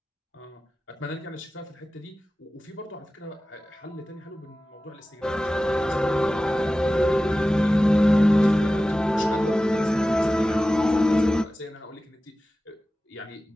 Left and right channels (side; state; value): both; normal; correlation 0.96